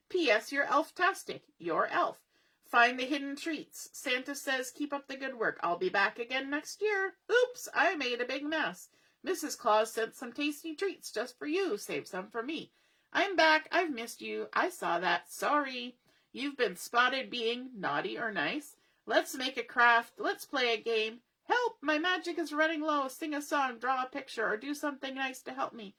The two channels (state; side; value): identical; both; correlation 1.00